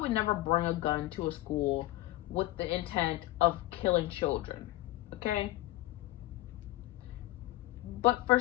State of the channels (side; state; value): right; quieter; 17.2 dB